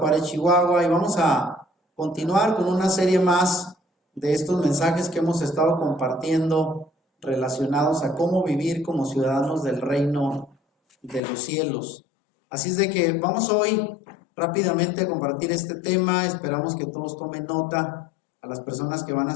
Chihuahua. Y vamos a continuar con una serie más de estos mensajes que hemos estado compartiendo relacionados a cómo vivir como ciudadanos del reino de los cielos. Así es de que vamos hoy rápidamente a compartir este tema. Esperamos que todos tomen nota. A las personas que van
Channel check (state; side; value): drops out; right; at 11.2 s